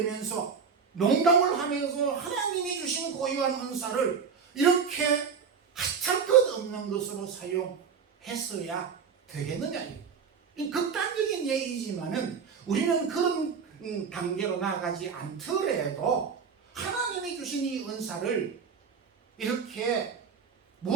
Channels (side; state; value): left; quieter; 6.1 dB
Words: 농담을 하면서 하나님이 주신 고유한 은사를 이렇게 하찮을 것 없는 것으로 사용했어야 되겠느냐. 이 극단적인 얘기지만은 우리는 그런 단계로 나아가지 않더라도 하나님이 주신 이 은사를 이렇게